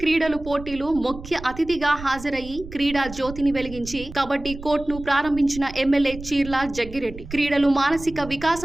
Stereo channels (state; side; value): noise; right; rumble, 13 dB below the sound